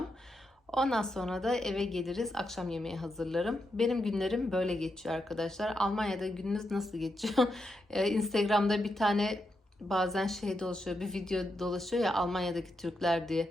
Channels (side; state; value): both; normal; correlation 0.84